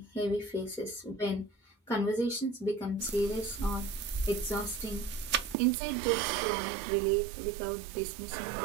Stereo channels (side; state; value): left; drops out; at 5.6 s